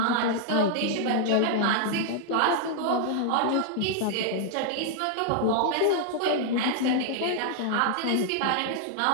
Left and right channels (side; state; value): both; different; correlation -0.01